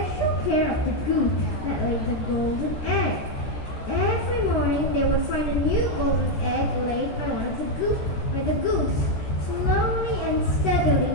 care of the goose that laid the golden egg. Every morning they would find a new golden egg laid by the goose. Slowly and steadily,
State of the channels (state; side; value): late; right; 14 ms